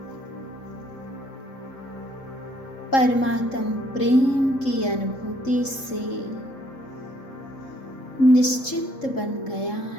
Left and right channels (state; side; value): late; right; 3.7 ms